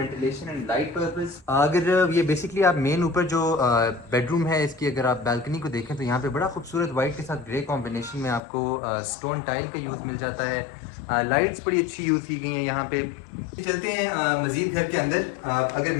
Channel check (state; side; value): drops out; right; at 8.4 s